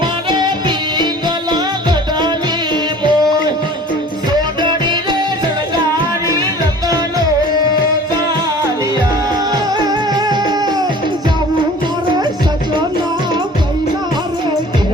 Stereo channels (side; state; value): both; normal; correlation 0.46